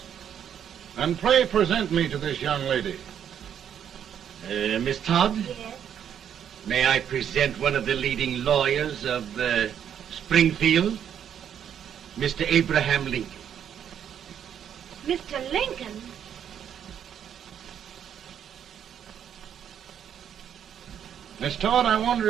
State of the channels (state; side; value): quieter; left; 9.0 dB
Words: And pray present me to this young lady. Miss Todd, Yes. may I present one of the leading lawyers of Springfield, Mr. Abraham Lincoln. Mr. Lincoln? Miss Todd, I